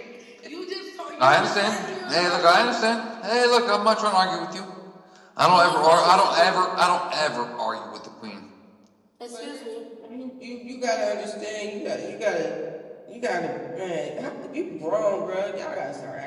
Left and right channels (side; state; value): both; identical; correlation 1.00